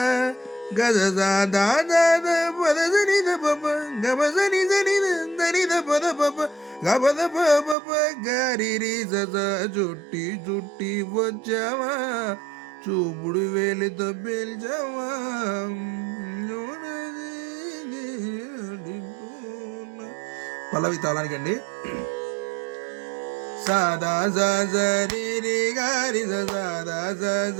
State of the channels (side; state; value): left; drops out; at 7.8 s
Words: గద సాదా పద సని ద పప గబ సని సని దని ద పద పప గబద పప గరి రి స చుట్టి చుట్టి వచ్చావా, చూపుడు వేలితో పేల్చావా. పల్లవి తాళానికండి. సాదా సరి గారి సాదా